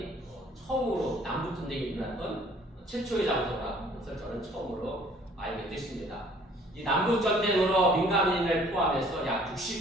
처음으로 남북전쟁이 일어났던 최초의 장소라는 것을 저는 처음으로 알게 됐습니다. 이 남북전쟁으로 민간인을 포함해서 약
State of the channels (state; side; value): normal; both; correlation 0.56